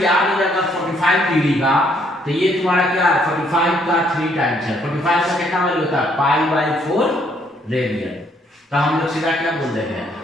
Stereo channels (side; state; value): both; normal; correlation 0.68